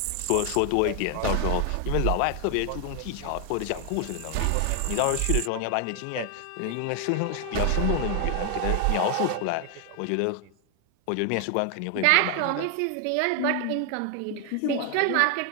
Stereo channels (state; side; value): different; both; correlation 0.00